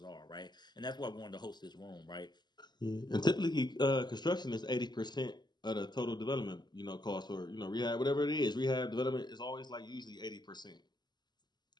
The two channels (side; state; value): right; late; 0.21 ms